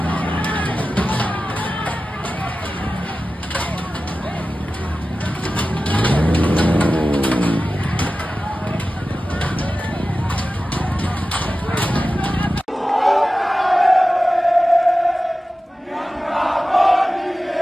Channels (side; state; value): both; normal; correlation 0.95